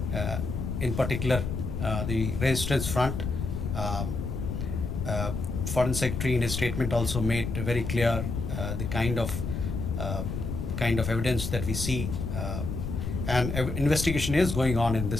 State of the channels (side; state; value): left; noise; rumble, 3 dB below the sound